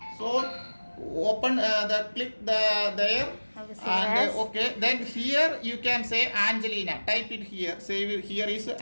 So open click there Have a save and as. okay. Then here you can say Angelina. Type it here. Save it. Here is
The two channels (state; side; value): inverted; both; correlation -1.00